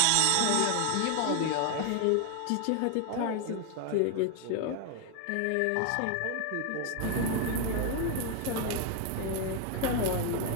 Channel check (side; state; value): both; different; correlation 0.00